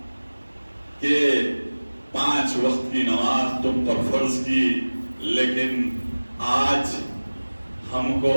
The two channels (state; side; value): inverted; both; correlation -1.00